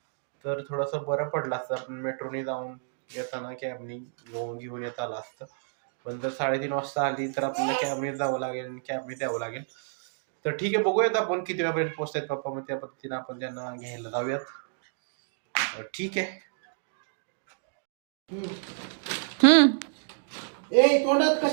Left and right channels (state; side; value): silent; left; digital silence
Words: तर थोडंसं बरं पडलं असतं, आपण मेट्रोने जाऊन येताना कॅबनी घेऊन येता आलं असतं. पण जर 3:30 वाजता आली तर आपल्याला कॅबने जावं लागेल आणि कॅबने द्यावं लागेल. तर ठीक आहे, बघूयात आपण किती वेळापर्यंत पोहोचतायत पप्पा, मग त्या पद्धतीने आपण त्यांना घ्यायला जाऊयात. ठीक आहे. ए तोंडात